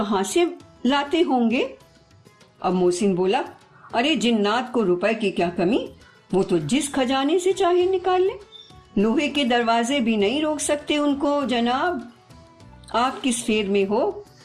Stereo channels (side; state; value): both; identical; correlation 1.00